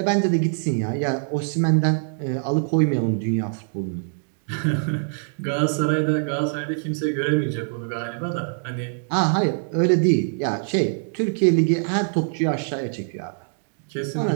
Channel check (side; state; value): left; silent; digital silence